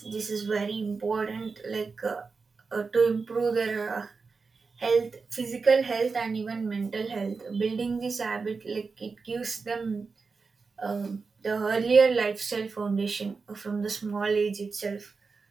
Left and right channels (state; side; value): quieter; left; 4.6 dB